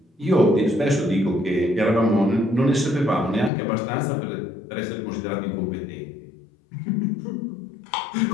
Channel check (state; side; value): drops out; right; at 3.5 s